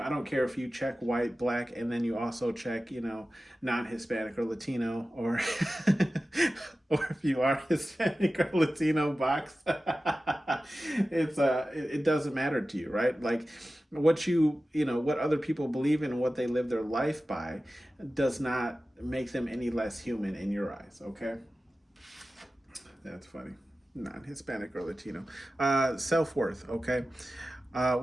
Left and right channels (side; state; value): both; normal; correlation 0.95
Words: don't care if you check white, black, and then you also check non-Hispanic or Latino, or or if you are Hispanic or Latino box. It doesn't matter to you, right? Like what what other people believe in and what they live their life by does not make them any less human in your eyes, okay? That's funny. Non-Hispanic or Latino. Self-worth, okay?